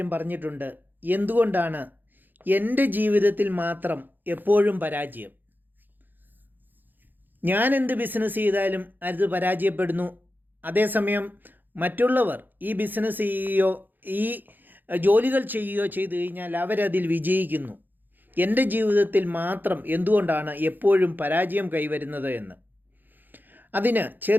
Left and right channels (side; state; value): left; late; 0.089 ms